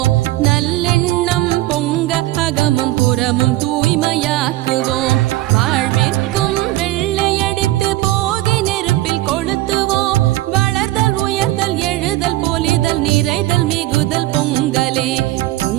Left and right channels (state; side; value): quieter; left; 17.1 dB